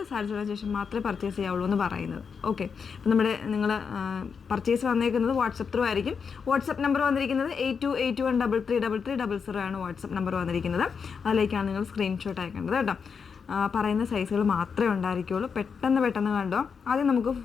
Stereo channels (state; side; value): quieter; right; 6.0 dB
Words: സാറ്റിസ്ഫൈഡ് ശേഷം മാത്രമേ പർച്ചേസ് ചെയ്യാവുള്ളൂ എന്ന് പറയുന്നത്. ഓക്കെ, അപ്പം നിങ്ങൾ പർച്ചേസ് വന്നേക്കുന്നത് വാട്സപ്പ് ത്രൂ ആയിരിക്കും. വാട്സപ്പ് നമ്പർ വന്നിരിക്കുന്നത് 8281333300 ആണ് വാട്സപ്പ് നമ്പർ വന്നിരിക്കുന്നത്. അതിലേക്കാണ് നിങ്ങൾ സ്ക്രീൻഷോട്ട് അയക്കേണ്ടത് കേട്ടോ. പറയുന്ന സൈസുകൾ മാത്രമേ ഉണ്ടായിരിക്കുള്ളൂ. പെട്ടെന്ന് കണ്ടോ. ആദ്യം നമുക്ക്